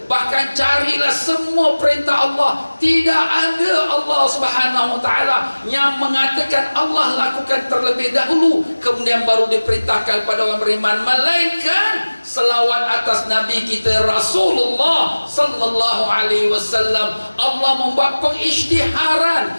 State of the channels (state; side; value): inverted; both; correlation -1.00